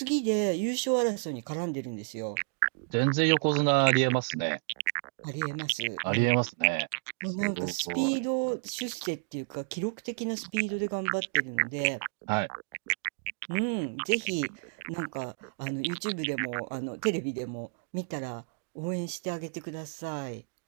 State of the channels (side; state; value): left; silent; digital silence